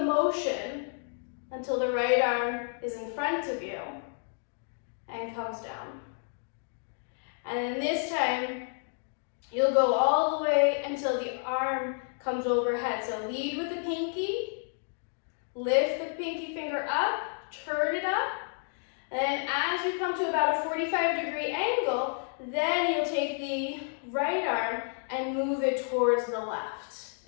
motion until the right arm is in front of you and comes down. And then this time, you'll go all the way until the arm comes overhead. So lead with the pinky, lift the pinky finger up, turn it up, and then as you come to about a 45-degree angle, then you'll take the right arm and move it towards the left.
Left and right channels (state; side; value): silent; right; 57 dB below the other